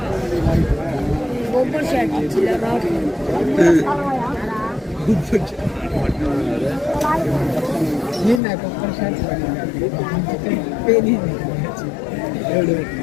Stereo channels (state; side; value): drops out; right; at 8.4 s